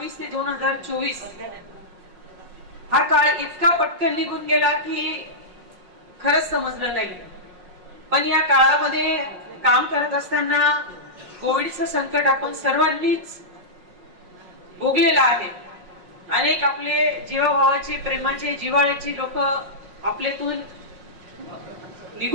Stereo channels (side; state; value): left; late; 5.5 ms